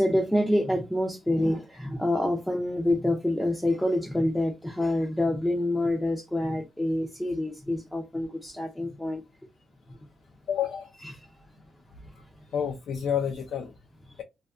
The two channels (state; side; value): normal; both; correlation 0.92